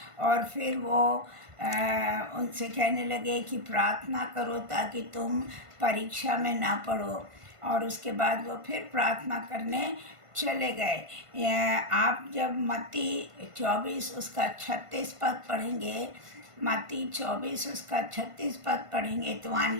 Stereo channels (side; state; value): left; late; 1.5 ms